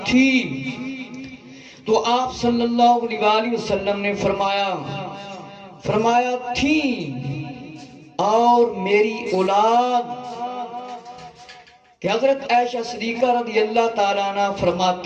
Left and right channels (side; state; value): both; identical; correlation 1.00